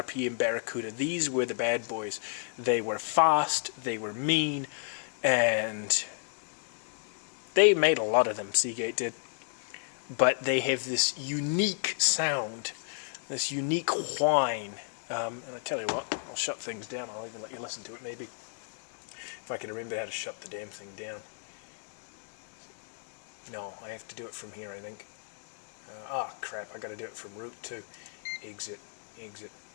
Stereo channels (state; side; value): silent; right; digital silence